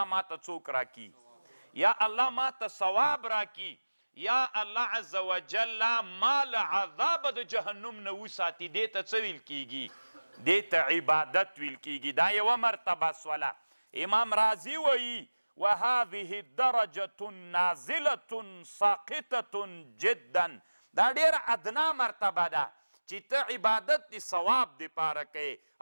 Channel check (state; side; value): inverted; both; correlation -1.00